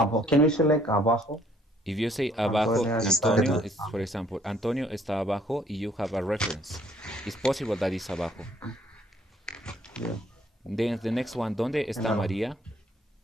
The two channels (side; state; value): both; normal; correlation 0.63